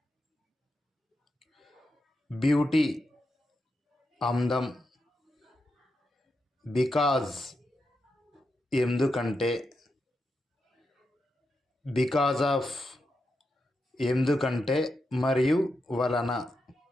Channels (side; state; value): both; normal; correlation 0.86